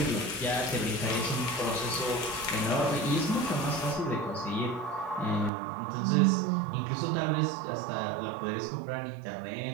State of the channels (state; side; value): drops out; left; at 5.5 s